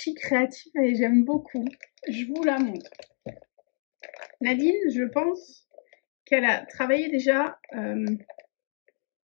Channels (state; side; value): silent; right; 60 dB below the other